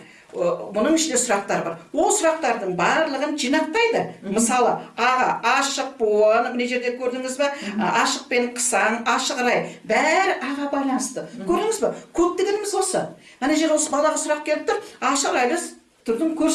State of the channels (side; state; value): both; identical; correlation 1.00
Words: Бұның ішінде сұрақтар бар. Ол сұрақтардың барлығын жинақтайды. Мысалы, аға ашық буын, мына жерде көрдіңіз бе? Ашық пен қысаң, ашық рай, бәрі аға байланысты. Көрдіңіз бе? Код дегеніміз осы. Ана жер осы балаға сұрақ келіп тұр, ашық райлы түрдің